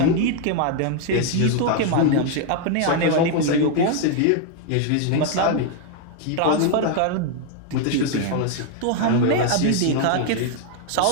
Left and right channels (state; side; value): different; both; correlation 0.00